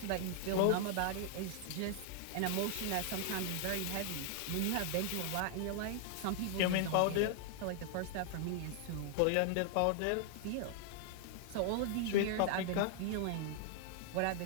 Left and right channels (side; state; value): both; different; correlation 0.00